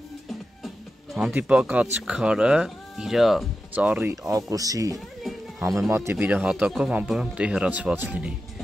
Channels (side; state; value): both; normal; correlation 0.91